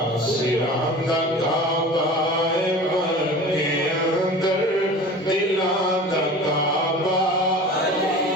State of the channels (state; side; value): normal; both; correlation 0.38